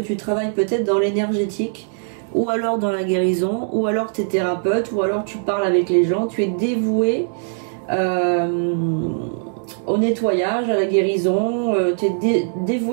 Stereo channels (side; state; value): left; silent; digital silence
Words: travailles peut-être dans l'énergétique, ou alors dans la guérison, ou alors tu es thérapeute, ou alors tu parles avec les gens. Tu es dévoué au nettoyage, à la guérison, tu es